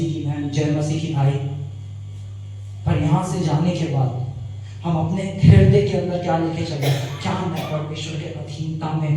की बहन, जय मसीह की भाई। पर यहां से जाने के बाद हम अपने हृदय के अंदर क्या लेके चले? क्या मैं परमेश्वर के अधीनता में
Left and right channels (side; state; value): both; identical; correlation 1.00